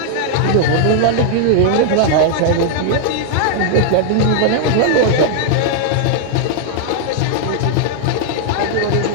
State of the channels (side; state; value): both; different; correlation 0.00